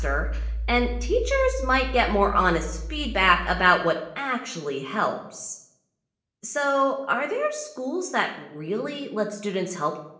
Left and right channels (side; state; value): both; identical; correlation 1.00